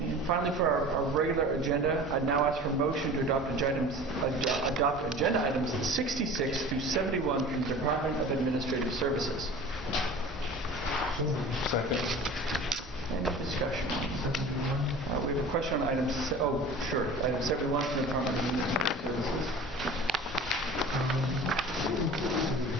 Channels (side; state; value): both; normal; correlation 0.40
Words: finally, for our regular agenda, I now ask for motion to adopt agenda items 66 through 71 from the Department of Administrative Services. Second. Any discussion? We have a question on item, item 71 from the Department of Administrative Services.